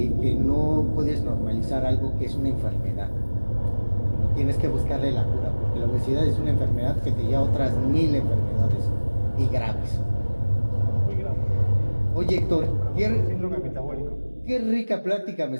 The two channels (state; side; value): inverted; both; correlation -1.00